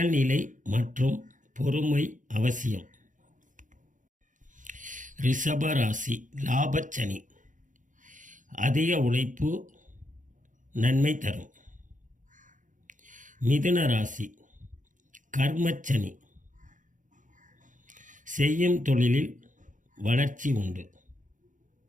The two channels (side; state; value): left; late; 0.37 ms